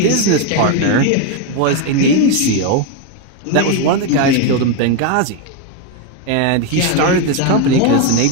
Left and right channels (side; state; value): both; different; correlation 0.02